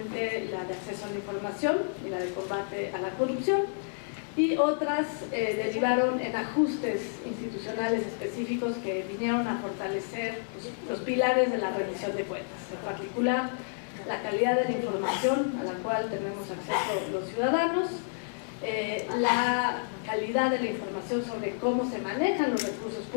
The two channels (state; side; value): silent; right; digital silence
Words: la de acceso a la información y la de combate a la corrupción, y otras derivaron en ajustes institucionales específicos que vinieron a fortalecer los pilares de la rendición de cuentas, en particular la calidad de la información a la cual tenemos acceso los ciudadanos, la calidad de la información sobre cómo se manejan los recursos